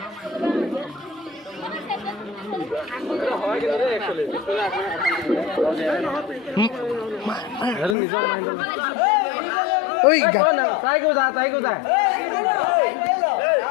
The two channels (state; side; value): drops out; right; at 8.0 s